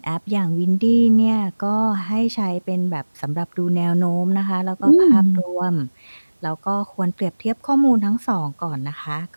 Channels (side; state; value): both; inverted; correlation -1.00